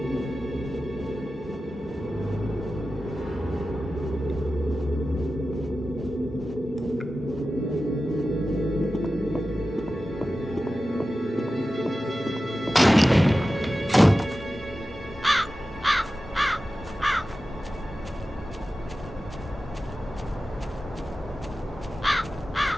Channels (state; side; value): normal; both; correlation 0.94